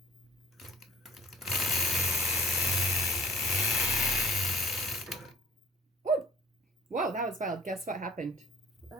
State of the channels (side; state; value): both; normal; correlation 0.53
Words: Whoa, that was wild. Guess what happened?